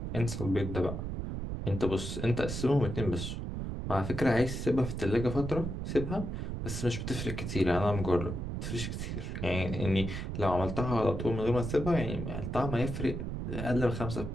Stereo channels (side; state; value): right; noise; rumble, 4 dB below the sound